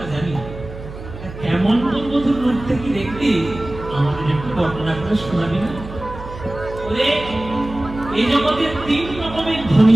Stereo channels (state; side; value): noise; right; hum, 12 dB below the sound